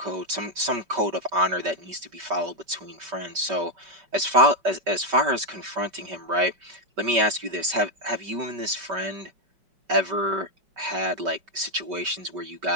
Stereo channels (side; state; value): left; late; 5.2 ms